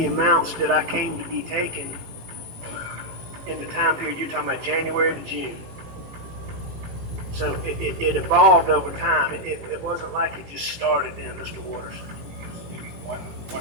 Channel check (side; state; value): left; late; 18 ms